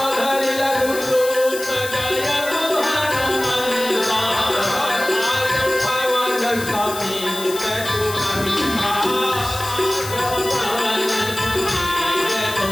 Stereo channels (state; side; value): noise; left; hiss, 10 dB below the sound